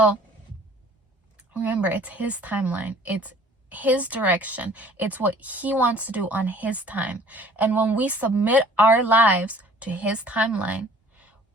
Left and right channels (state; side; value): normal; both; correlation 0.52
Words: remember, it's his timeline. It's his direction. It's what he wants to do on his time. And when we submit our lives to his timeline,